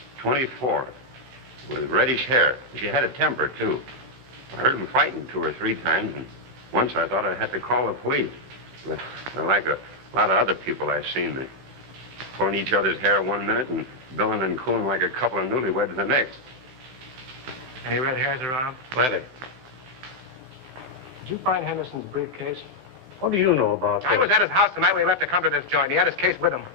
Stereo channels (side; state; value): left; late; 16 ms